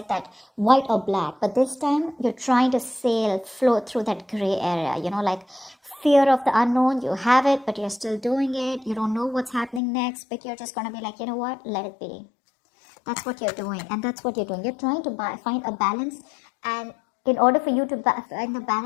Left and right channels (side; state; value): right; drops out; at 9.8 s